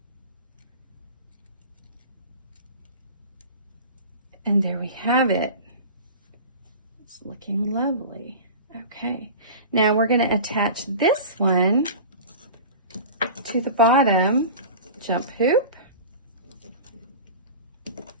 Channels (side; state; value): both; inverted; correlation -0.36